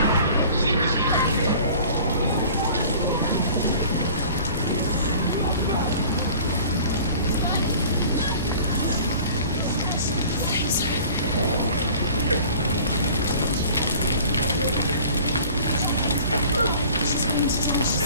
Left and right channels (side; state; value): both; inverted; correlation -0.46